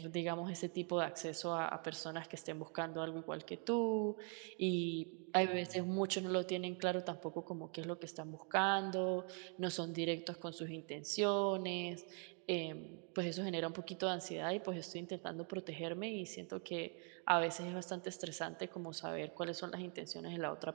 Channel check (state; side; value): quieter; left; 39.9 dB